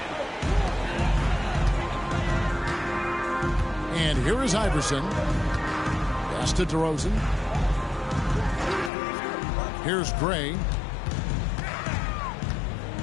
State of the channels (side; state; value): right; drops out; at 8.9 s